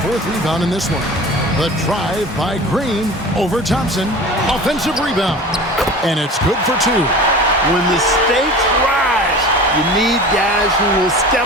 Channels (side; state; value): both; normal; correlation 0.37